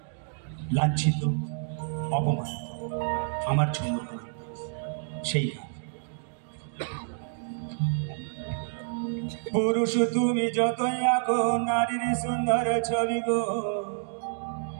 লাঞ্ছিত, অপমানিত। আমার ঝুমুর গান সেই গান। পুরুষ তুমি যতই আঁকো নারীর সুন্দর ছবি গো,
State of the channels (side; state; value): left; silent; digital silence